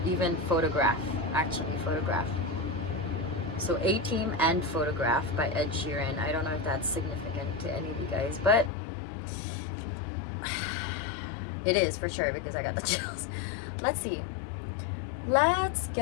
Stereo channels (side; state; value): right; drops out; at 8.7 s